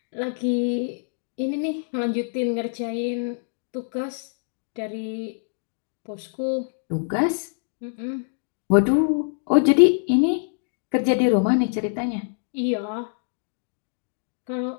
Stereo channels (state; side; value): silent; right; digital silence